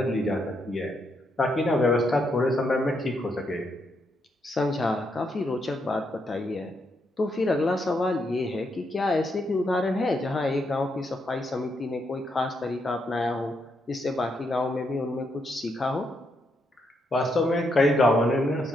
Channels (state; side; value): normal; both; correlation 0.79